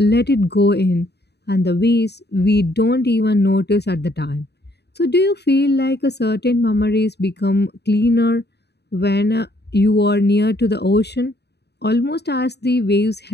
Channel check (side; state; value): right; late; 0.48 ms